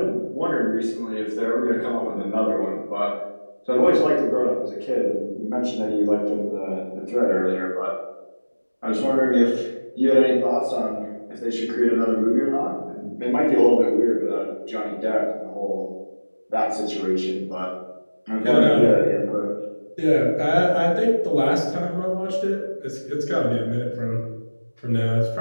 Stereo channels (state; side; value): inverted; both; correlation -1.00